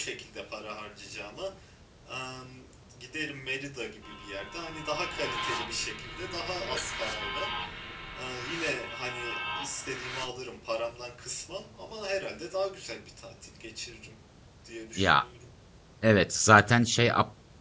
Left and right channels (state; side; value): identical; both; correlation 1.00